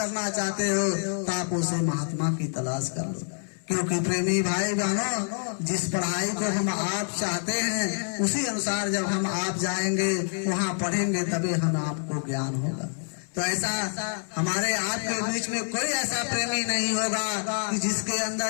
चाहते हो तो आप उसे महात्मा की तलाश कर लो। क्योंकि प्रेमी भाई बहनों जिस पढ़ाई को हम आप चाहते हैं उसी अनुसार जब हम आप जाएंगे वहाँ पढ़ेंगे तभी हम आपको ज्ञान होगा। तो ऐसा हमारे आपके बीच में कोई ऐसा प्रेमी नहीं होगा कि जिसके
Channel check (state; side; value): silent; right; 60 dB below the other